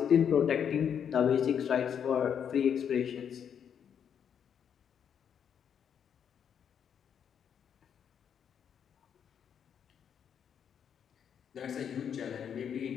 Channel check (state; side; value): quieter; right; 8.1 dB